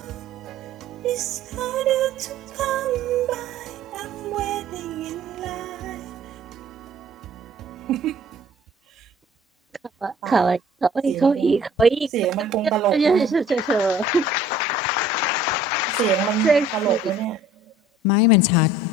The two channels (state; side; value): normal; both; correlation 0.51